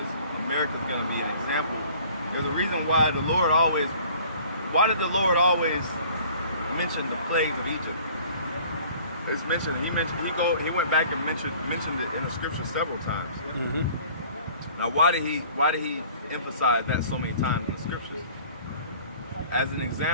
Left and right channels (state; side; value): inverted; both; correlation -0.51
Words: America's gonna be an example. There's a reason why did the Lord always mention the plagues of Egypt? It's mentioned, he went back and mentioned it in the scripture several times. Now why did he emphasize that so many times in the scriptures? As an